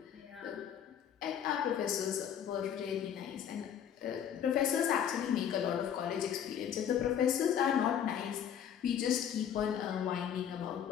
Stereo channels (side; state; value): right; quieter; 9.0 dB